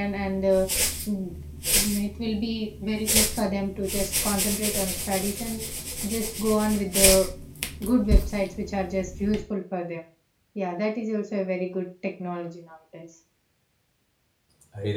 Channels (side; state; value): both; identical; correlation 1.00